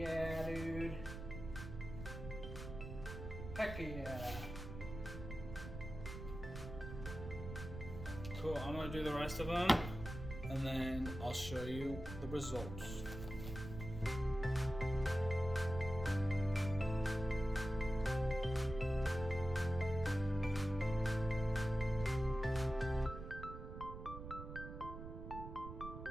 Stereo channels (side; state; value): right; noise; rumble, 9 dB below the sound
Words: dude. Heck yeah. Cool, I'm gonna do the rest of them and then I'll show you the results.